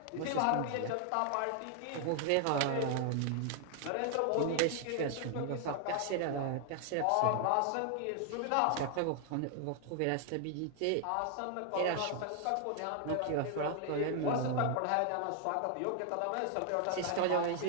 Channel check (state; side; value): different; both; correlation 0.00